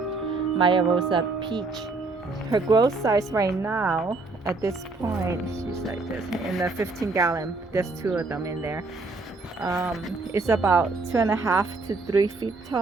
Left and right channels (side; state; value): left; quieter; 3.7 dB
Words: Maya Rosa peach. Her growth size right now at this point, she's like this in the 15 gallon. There's 2 of them in there. It's about 2.5 to 3 feet